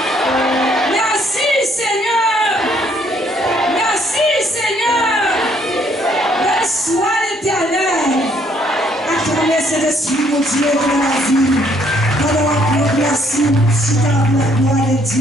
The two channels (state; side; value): normal; both; correlation 0.67